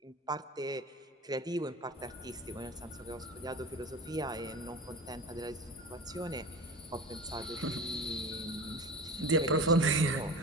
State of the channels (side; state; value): both; normal; correlation 0.33